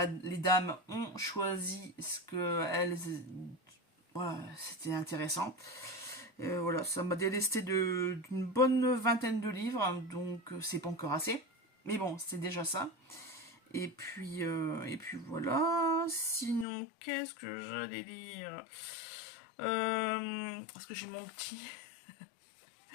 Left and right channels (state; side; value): drops out; right; at 16.7 s